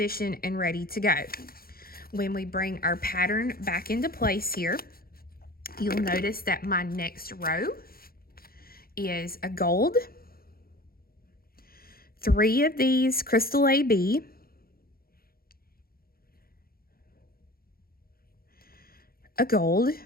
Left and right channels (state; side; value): late; right; 0.43 ms